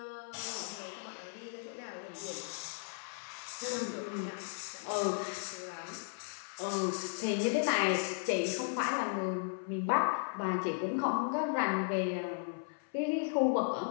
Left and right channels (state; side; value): silent; right; 54 dB below the other